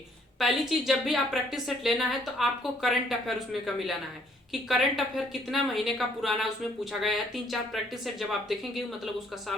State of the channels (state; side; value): normal; both; correlation 0.65